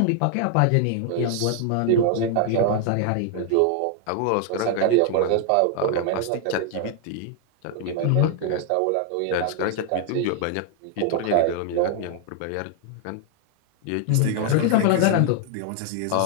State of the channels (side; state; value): both; different; correlation 0.00